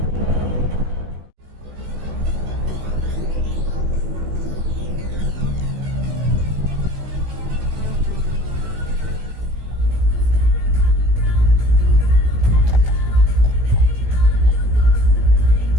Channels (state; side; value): late; left; 17 ms